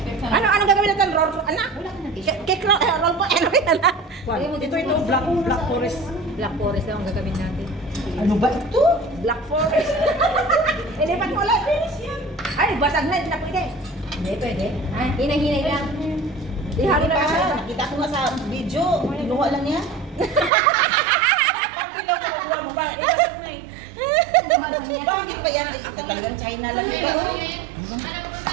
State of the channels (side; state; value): left; drops out; at 20.5 s